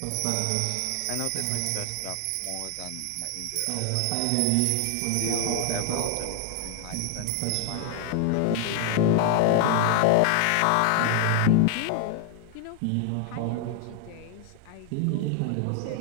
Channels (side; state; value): both; different; correlation 0.00